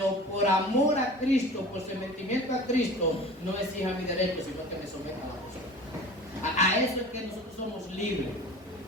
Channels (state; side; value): normal; both; correlation 0.39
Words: por amor a Cristo, por sometimiento a Cristo, no exija mi derecho, sino que me someta a la persona. A eso es que nosotros somos libres,